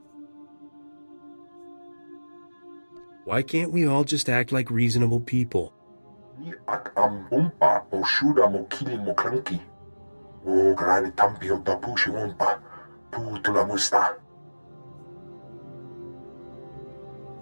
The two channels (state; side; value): inverted; both; correlation -1.00